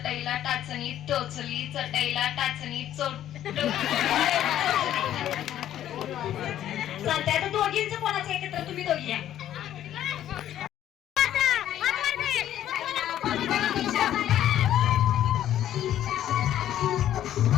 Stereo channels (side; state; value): right; quieter; 11.7 dB